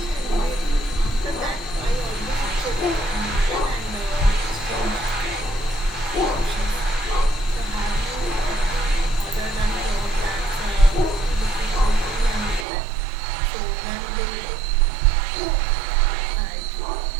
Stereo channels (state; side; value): drops out; left; at 12.7 s